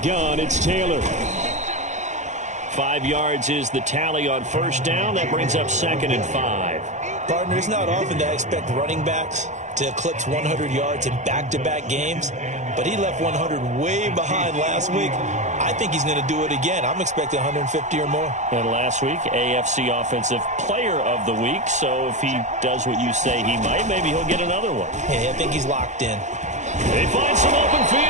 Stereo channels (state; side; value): late; left; 0.34 ms